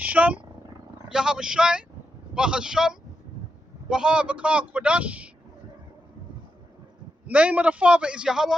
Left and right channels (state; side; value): normal; both; correlation 0.85